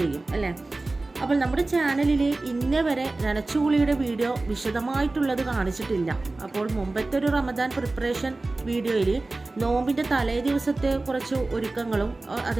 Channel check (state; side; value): quieter; left; 3.1 dB